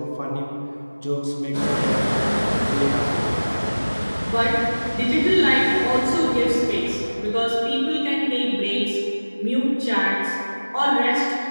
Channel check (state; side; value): inverted; both; correlation -1.00